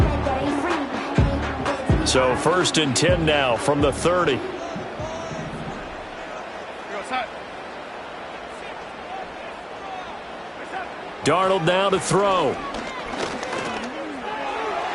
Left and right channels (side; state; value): both; identical; correlation 1.00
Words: So 1st and 10 now from the 30. Darnold now to throw.